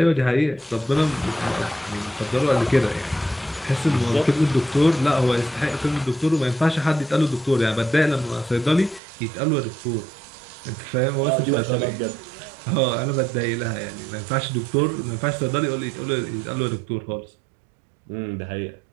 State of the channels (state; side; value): drops out; left; at 9.0 s